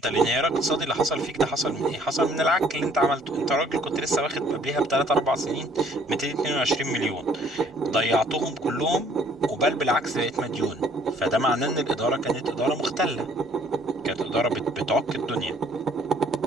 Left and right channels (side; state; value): both; normal; correlation 0.59